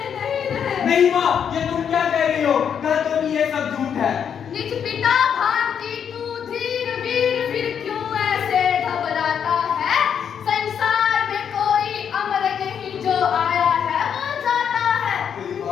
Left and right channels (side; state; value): right; quieter; 7.9 dB